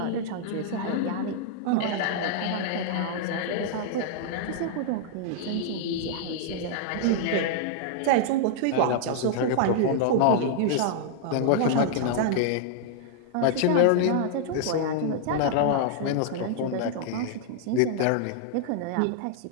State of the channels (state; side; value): different; both; correlation -0.01